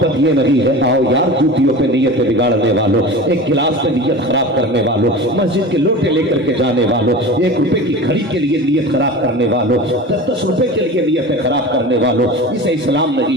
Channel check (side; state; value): both; normal; correlation 0.33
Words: ये नहीं है आओ यार जूतियों पे नीयत बिगाड़ने वालों, एक गिलास पे नीयत खराब करने वालों, मस्जिद के लोटे लेकर के जाने वालों, 1 रुपए की घड़ी के लिए नीयत खराब करने वालों, 10-10 रुपए के लिए नीयतें खराब करने वालों, इसे इस्लाम नहीं